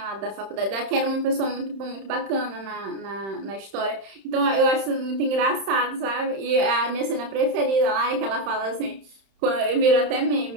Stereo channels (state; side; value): late; left; 31 ms